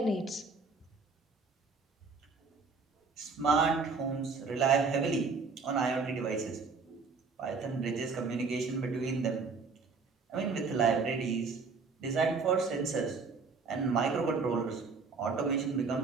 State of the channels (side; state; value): left; quieter; 4.6 dB